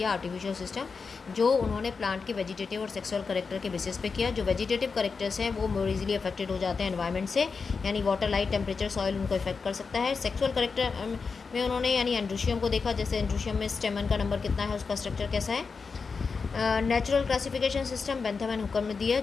आर्टिफिशियल सिस्टम, जो उन्होंने प्लांट के वेजिटेटिव और सेक्सुअल करेक्टर के बेसिस पे किया। जो वेजिटेटिव करेक्टर्स हैं वो मोर इजीली अफेक्टेड हो जाते हैं एनवायरनमेंट से, यानी वाटर, लाइट, टेम्परेचर, सॉइल उनको इफेक्ट कर सकता है। सेक्सुअल करेक्टर में उन्होंने यानी एंड्रोशियम को देखा, जैसे एंड्रोशियम में स्टेमन का नंबर कितना है, उसका स्ट्रक्चर कैसा है। Natural classification system Bentham and हुकम ने दिया,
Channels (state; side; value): quieter; right; 5.0 dB